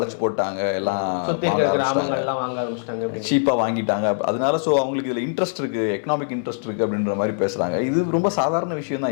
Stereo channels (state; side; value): silent; right; digital silence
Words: போட்டாங்க, எல்லாம் சீப்பா வாங்கிட்டாங்க. அதனால சோ அவங்களுக்கு இதுல இன்ட்ரெஸ்ட் இருக்கு, எக்கனாமிக் இன்ட்ரெஸ்ட் இருக்கு அப்படின்ற மாதிரி பேசுறாங்க. இது ரொம்ப சாதாரண விஷயம்